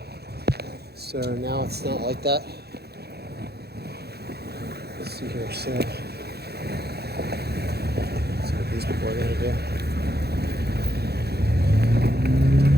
So now it's not like that. Let's see here. So, let's see what these people are going to do.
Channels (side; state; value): left; late; 0.47 ms